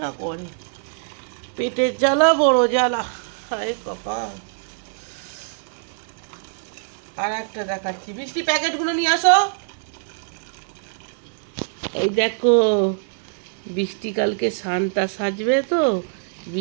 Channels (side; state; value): left; silent; 60 dB below the other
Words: না করে। পেটের জ্বালা বড় জ্বালা, হায় কপাল। আর একটা দেখাচ্ছি, বৃষ্টি প্যাকেটগুলো নিয়ে আসো। এই দেখো, বৃষ্টি কালকে সান্তা সাজবে তো,